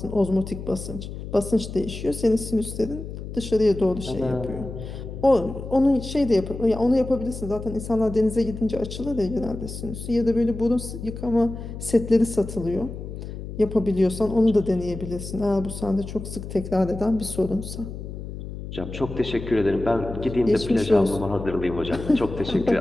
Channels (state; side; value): noise; left; hum, 9 dB below the sound